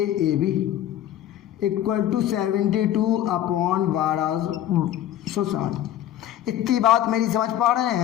A B equal to 72 upon 1260। इतनी बात मेरी समझ पा रहे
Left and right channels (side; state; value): right; quieter; 11.9 dB